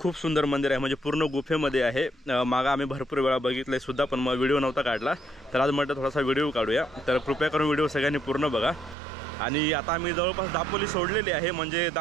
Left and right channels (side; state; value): left; drops out; at 9.0 s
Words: सुंदर मंदिर आहे, म्हणजे पूर्ण गुफेमध्ये आहे. मागं आम्ही भरपूर वेळा बघितलंय सुद्धा, पण मग व्हिडिओ नव्हता काढला. तर आज म्हटलं थोडासा व्हिडिओ काढूया. तर कृपया करून व्हिडिओ सगळ्यांनी पूर्ण बघा. आणि आता आम्ही जवळपास दापोली सोडलेली आहे, म्हणजे